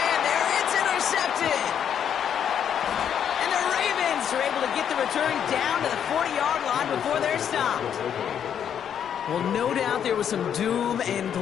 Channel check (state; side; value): quieter; right; 8.7 dB